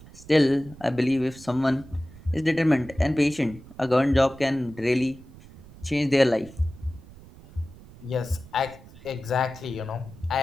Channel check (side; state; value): right; noise; rumble, 20 dB below the sound